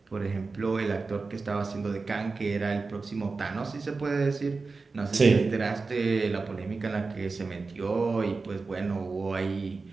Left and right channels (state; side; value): quieter; left; 4.1 dB